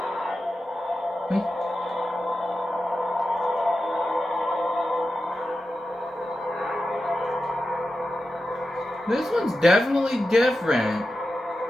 This one's definitely different.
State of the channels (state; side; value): normal; both; correlation 0.92